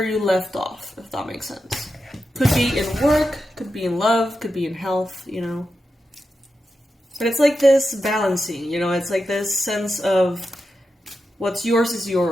you left off, if that makes sense. Could be in work, could be in love, could be in health, you know. But it's like this balancing, you know, it's like this sense of what's yours is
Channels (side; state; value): both; normal; correlation 0.89